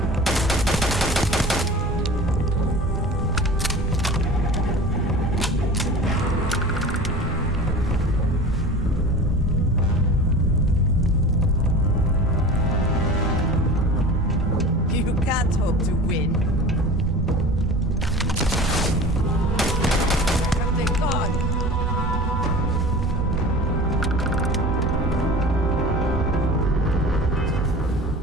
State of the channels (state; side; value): normal; both; correlation 0.37